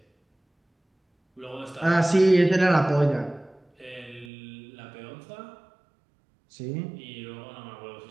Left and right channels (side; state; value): left; drops out; at 4.3 s